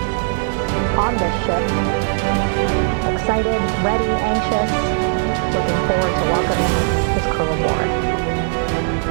on this ship. Excited, ready, anxious, looking forward to welcoming his crew aboard.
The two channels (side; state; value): left; silent; digital silence